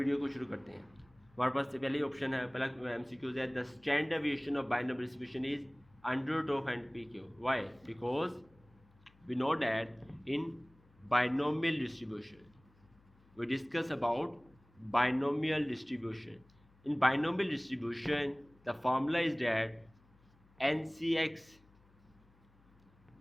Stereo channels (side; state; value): left; noise; hum, 30 dB below the sound